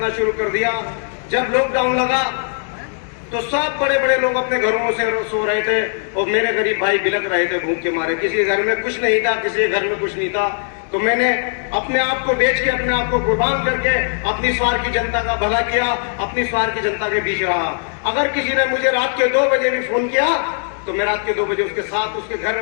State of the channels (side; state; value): right; silent; 65 dB below the other